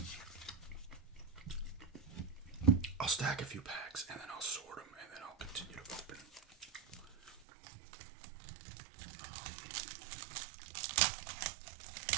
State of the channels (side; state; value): left; drops out; at 7.4 s